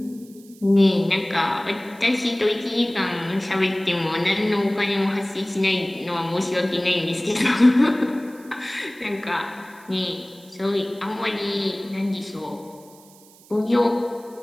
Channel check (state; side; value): noise; right; hiss, 25 dB below the sound